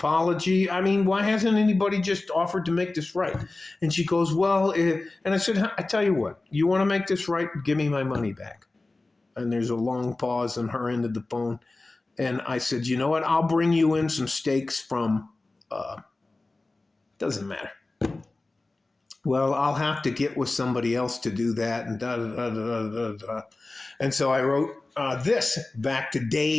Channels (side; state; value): right; quieter; 3.2 dB